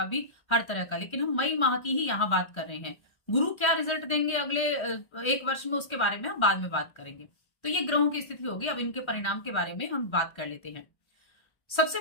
भी, हर तरह का। लेकिन हम मई माह की ही यहाँ बात कर रहे हैं। गुरु क्या रिजल्ट देंगे अगले 1 वर्ष में, उसके बारे में हम बाद में बात करेंगे। तो ये ग्रहों की स्थिति होगी। अब इनके परिणाम के बारे में हम बात कर लेते हैं। सबसे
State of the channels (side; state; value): right; late; 1.3 ms